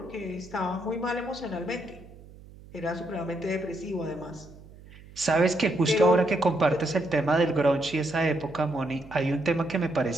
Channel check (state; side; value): noise; right; hum, 20 dB below the sound